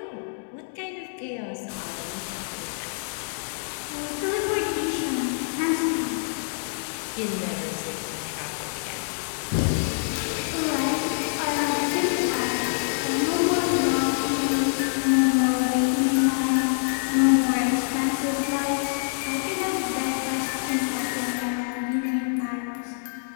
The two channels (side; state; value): right; silent; digital silence